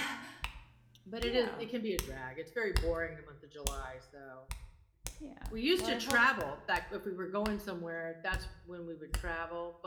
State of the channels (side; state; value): both; identical; correlation 1.00